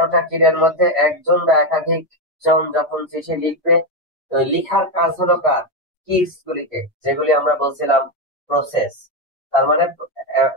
কিডের মধ্যে একজন বা একাধিক জন যখন চিঠি লিখবে, তো লিখার কাজ হলো কার? কিডস গুলিকে, যেগুলি আমরা বলছিলাম প্রসেস। তার মানে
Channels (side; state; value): both; normal; correlation 0.08